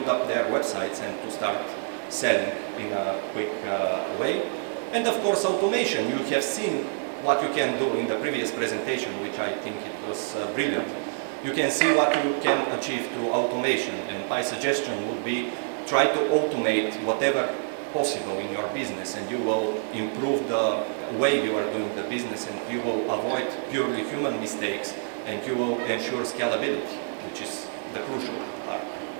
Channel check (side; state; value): left; silent; digital silence